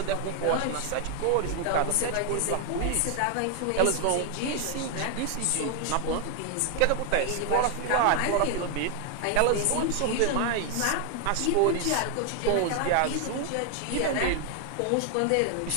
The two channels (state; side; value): different; both; correlation 0.01